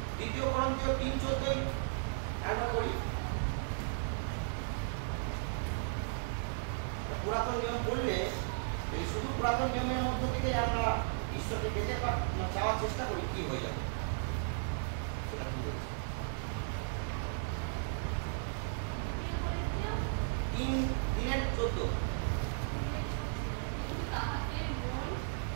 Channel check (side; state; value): left; silent; 54 dB below the other